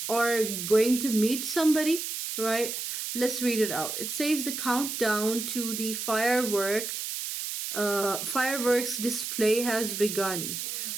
or going to meet somebody, right? Let's read it out. It says the countdown to the fireworks display has begun.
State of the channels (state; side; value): noise; right; hiss, 4 dB below the sound